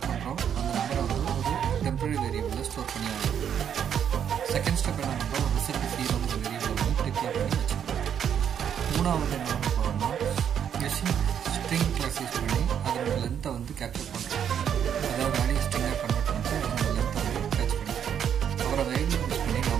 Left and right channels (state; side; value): quieter; left; 8.6 dB